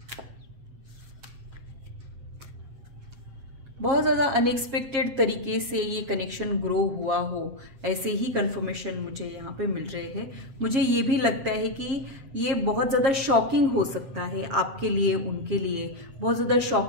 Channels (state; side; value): late; left; 7.4 ms